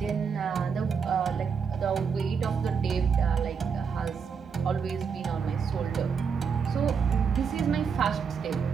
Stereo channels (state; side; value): quieter; left; 6.2 dB